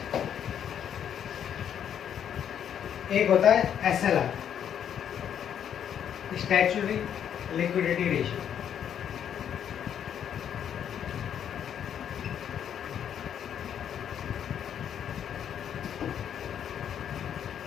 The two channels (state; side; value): quieter; right; 9.0 dB